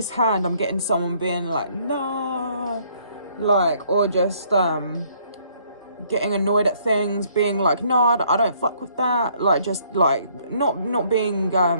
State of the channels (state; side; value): inverted; both; correlation -0.65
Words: hand, I'm getting someone being like, no, like, or just, getting annoyed at things, being like, no, I don't fuck with that. Like, just, like, not being,